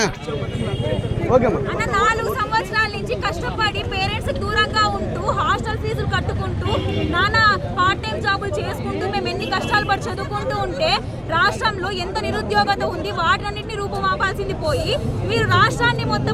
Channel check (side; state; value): both; identical; correlation 1.00